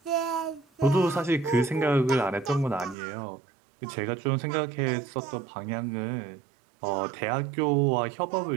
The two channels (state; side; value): drops out; left; at 3.0 s